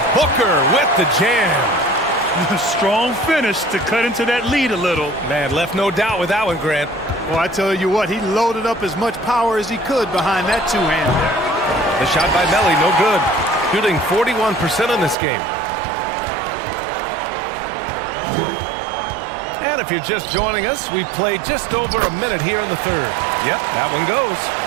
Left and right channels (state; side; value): drops out; left; at 15.2 s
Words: Booker with the jam. Strong finish to cut into that lead a little. Man, left no doubt with that one, Grant. Well, I tell you what, he loaded up as much power as he could behind that two-hand there. The shot by Melly, no good. Shooting 41% in this game. And if you're just joining us, we've played just over a minute here in the third. Yep, that one goes.